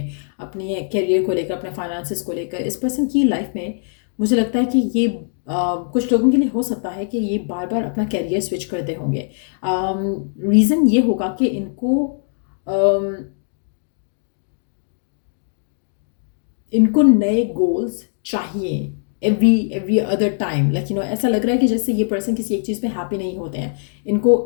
अपने करियर को लेकर, अपने फाइनेंसेस को लेकर। इस पर्सन की लाइफ में मुझे लगता है कि ये कुछ लोगों के लिए हो सकता है कि ये बार बार अपना करियर स्विच करते होंगे। रीज़न ये होगा कि इनको नए गोल्स चाहिए एवरी अदर टाइम। लाइक ऐसा लग रहा है कि जैसे ये पर्सन किसी एक चीज़ पे हैप्पी नहीं होते हैं, इनको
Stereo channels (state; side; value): silent; right; digital silence